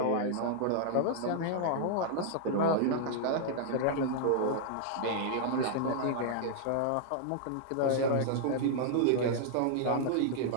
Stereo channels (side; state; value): both; different; correlation -0.01